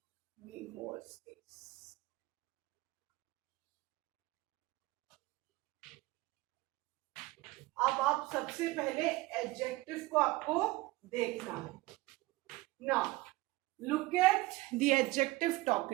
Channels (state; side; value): quieter; left; 20.2 dB